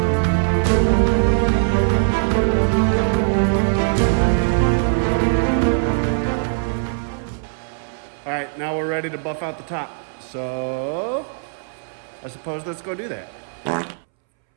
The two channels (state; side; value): silent; left; 65 dB below the other